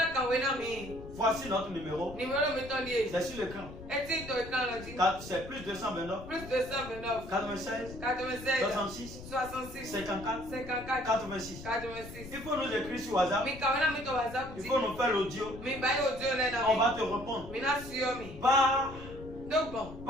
voici notre numéro. C'est sur l'écran. C'est plus 229 96 66 54 86. Il faut nous écrire sur WhatsApp. Il faut nous faire l'audio. On va te répondre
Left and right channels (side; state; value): left; noise; rumble, 13 dB below the sound